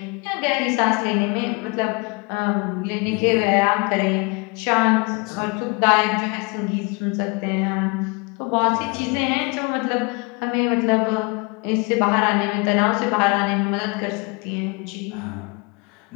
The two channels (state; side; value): quieter; right; 29.7 dB